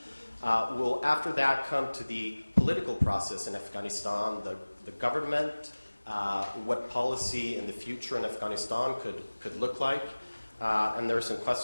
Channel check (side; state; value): both; inverted; correlation -1.00